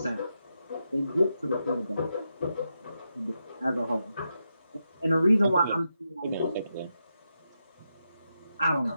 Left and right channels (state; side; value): inverted; both; correlation -0.85